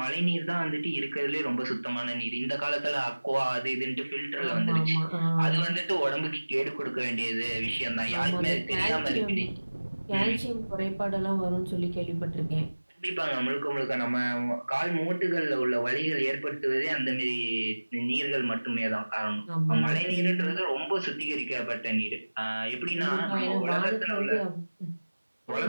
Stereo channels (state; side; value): inverted; both; correlation -1.00